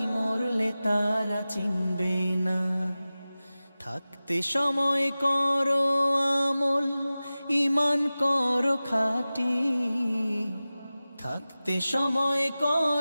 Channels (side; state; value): both; inverted; correlation -0.96